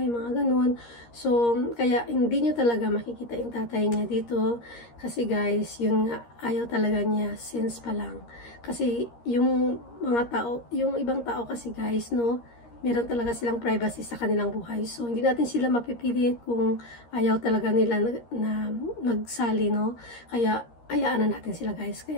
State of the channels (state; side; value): late; right; 13 ms